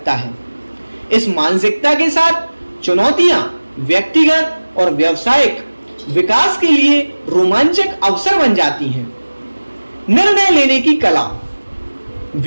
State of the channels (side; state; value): both; inverted; correlation -1.00